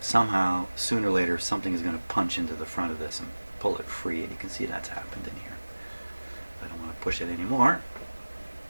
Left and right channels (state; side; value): inverted; both; correlation -1.00